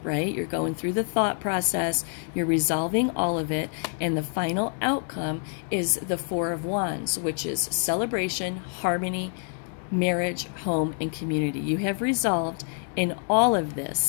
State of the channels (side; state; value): right; silent; 55 dB below the other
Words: right? You're going through the thought process. You're resolving all of it. And the final outcome is the Four of Wands, which is celebration, harmony, marriage, home, and community. You have resolved in all of